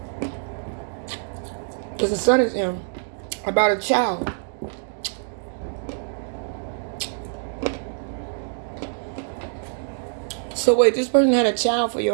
Because the Sun is in about a child. So wait, this person had a child for your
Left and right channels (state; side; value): silent; left; digital silence